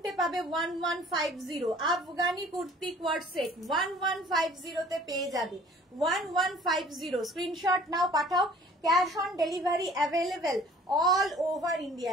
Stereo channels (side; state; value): both; normal; correlation 0.51